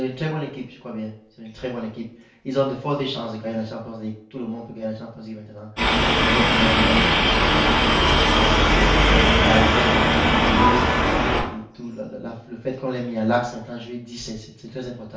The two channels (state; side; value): identical; both; correlation 1.00